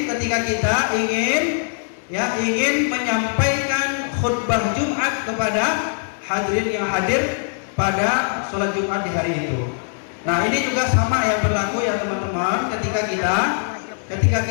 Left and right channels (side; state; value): right; silent; 65 dB below the other